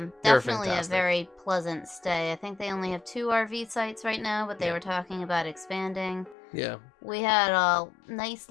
Definitely a very pleasant stay. I think they only have 2 RV sites right now, but they were talking about expanding. Yeah. We had a nice,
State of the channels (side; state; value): right; drops out; at 6.4 s